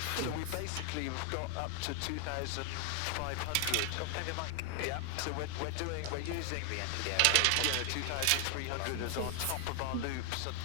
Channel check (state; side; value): different; both; correlation 0.00